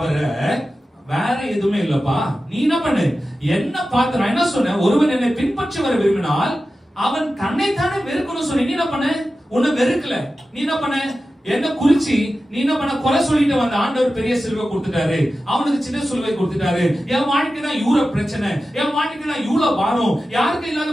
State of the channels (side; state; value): both; normal; correlation 0.93